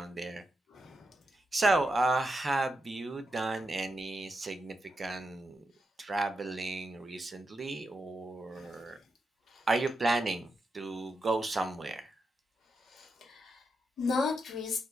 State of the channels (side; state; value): both; normal; correlation 0.86